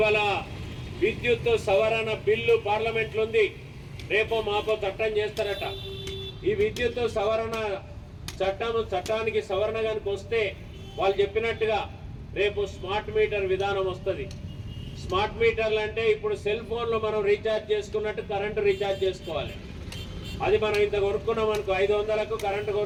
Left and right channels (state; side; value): identical; both; correlation 1.00